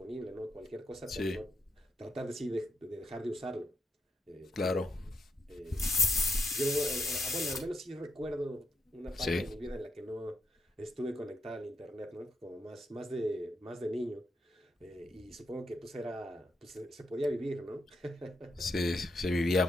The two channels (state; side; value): normal; both; correlation 0.82